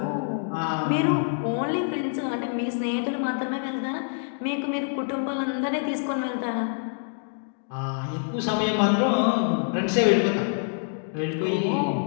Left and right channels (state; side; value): silent; right; digital silence